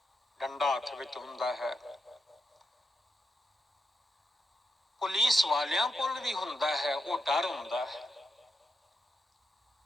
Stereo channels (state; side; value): normal; both; correlation 0.85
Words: ਡੰਡਾ ਹੱਥ ਵਿੱਚ ਹੁੰਦਾ ਹੈ। ਪੁਲਿਸ ਵਾਲਿਆਂ ਕੋਲ ਵੀ ਹੁੰਦਾ ਹੈ, ਉਹ ਡਰ ਹੁੰਦਾ ਹੈ।